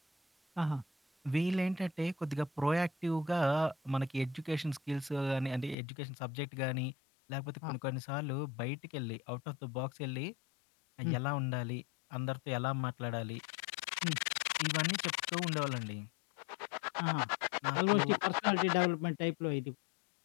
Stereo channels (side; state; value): right; drops out; at 5.8 s